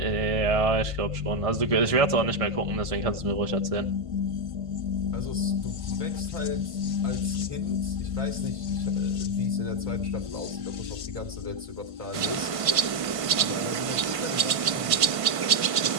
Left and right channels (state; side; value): late; left; 1.5 ms